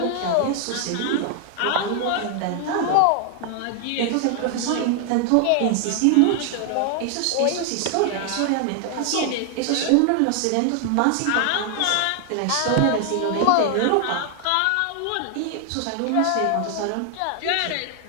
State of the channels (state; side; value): different; both; correlation 0.00